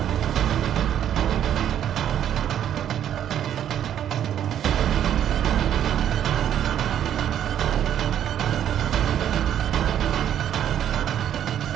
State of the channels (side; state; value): left; quieter; 10.2 dB